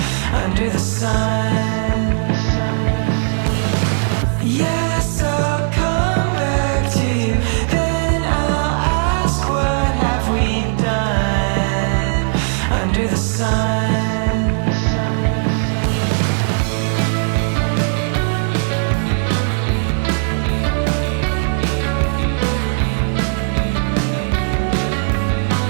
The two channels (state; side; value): silent; left; digital silence